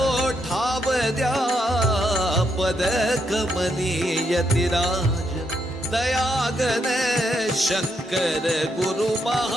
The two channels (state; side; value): normal; both; correlation 0.78